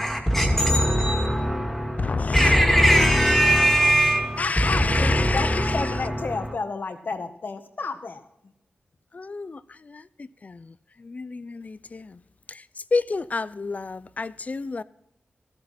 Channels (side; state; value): both; normal; correlation 0.88